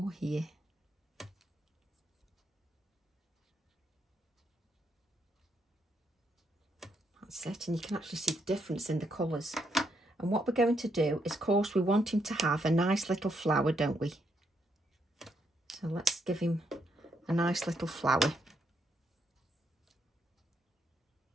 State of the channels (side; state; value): both; normal; correlation 0.77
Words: here. That's it, and you can actually see the difference in the colours. And what we're going to do is, of course, we want him to have a nice little flower, don't we? So let's give him a nice little flower.